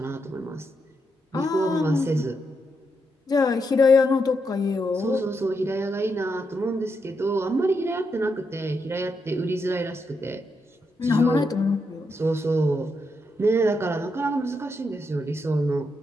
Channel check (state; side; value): normal; both; correlation 0.82